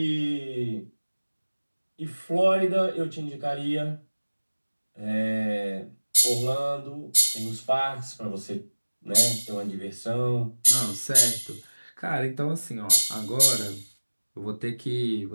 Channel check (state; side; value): inverted; both; correlation -1.00